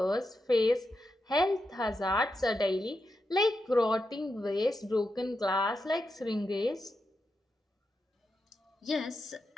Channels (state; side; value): normal; both; correlation 0.87